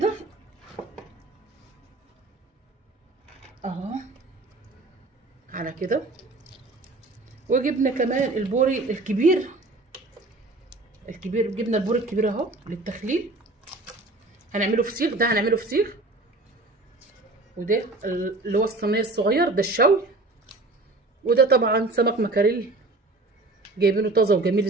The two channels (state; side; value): quieter; left; 3.0 dB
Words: اهو على كده، وجبنا كمان البوري الكبير جبنا البوري الكبير اهو للتخليل. هنعمله فسيخ، ده هنعمله فسيخ. وده اللي هو الصينيه الصغير ده الشوي. وده طبعا سمك مكاريل جايبينه طازه وجميل